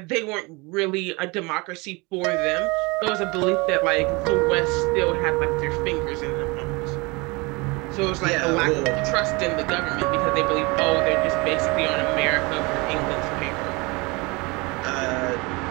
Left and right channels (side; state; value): left; quieter; 26.2 dB